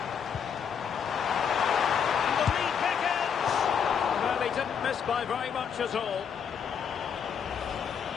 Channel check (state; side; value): quieter; right; 7.3 dB